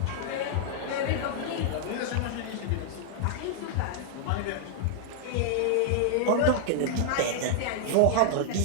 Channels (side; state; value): both; different; correlation -0.01